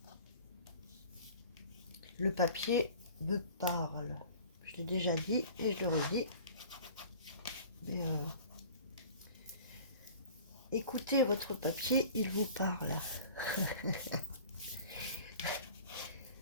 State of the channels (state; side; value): inverted; both; correlation -0.44